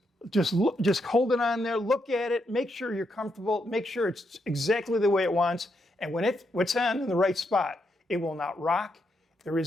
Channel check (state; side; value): normal; both; correlation 0.80